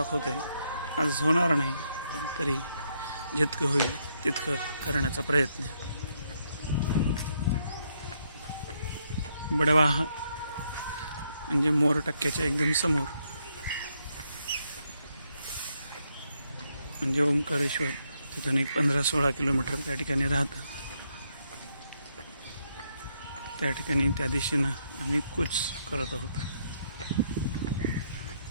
आहे। आज होणार नाही पण तरी जितकं होईल तितकं करण्याचा प्रयत्न। बडवा म्हणजे मोर टक्क्याच्या एकदम समोर म्हणजे ओंकारेश्वर, तिथून एक 15-16 किलोमीटर त्या ठिकाणी राहतं। त्या ठिकाणी त्या दिशेनं आम्ही कूच करत आहोत।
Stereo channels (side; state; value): both; inverted; correlation -0.76